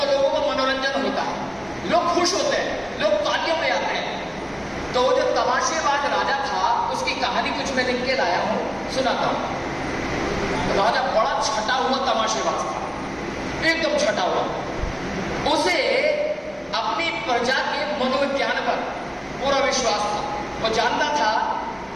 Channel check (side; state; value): both; identical; correlation 1.00